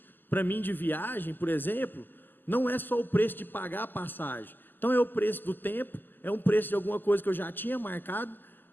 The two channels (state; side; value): late; right; 0.090 ms